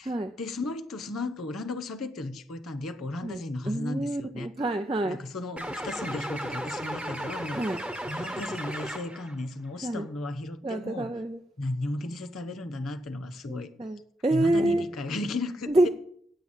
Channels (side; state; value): both; normal; correlation 0.80